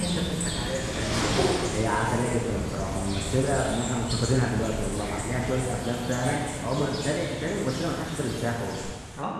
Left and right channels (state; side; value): identical; both; correlation 1.00